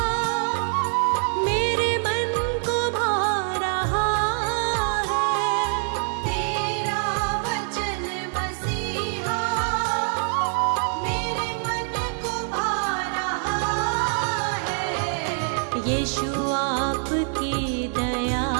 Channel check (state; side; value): silent; left; 62 dB below the other